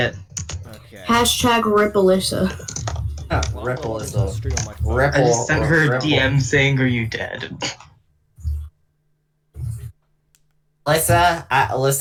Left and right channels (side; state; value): both; identical; correlation 1.00